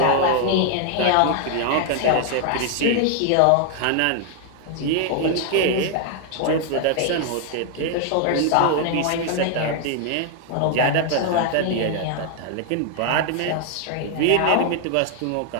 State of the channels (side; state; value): both; different; correlation 0.00